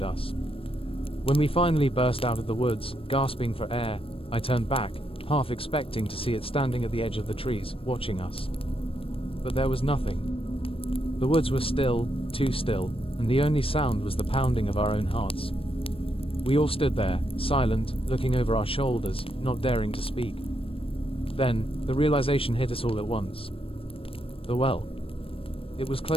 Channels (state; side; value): late; right; 0.27 ms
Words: us. When we finally burst out of the woods, gasping for air, I turned back, half expecting to see it standing at the edge of the trees, watching us. But there was nothing. The woods were still, too still, and the only sound was the pounding of our own hearts. We all stood there, silent, looking over our shoulders, not daring to speak. Then, the realization hit us all at once. The well. It was